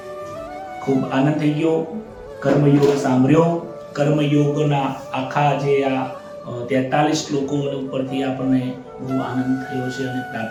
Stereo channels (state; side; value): identical; both; correlation 1.00